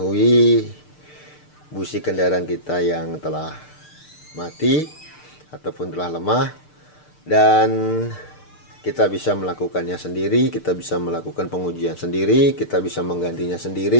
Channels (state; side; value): late; right; 6.7 ms